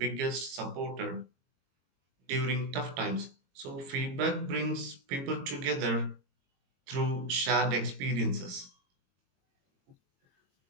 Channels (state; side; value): late; left; 22 ms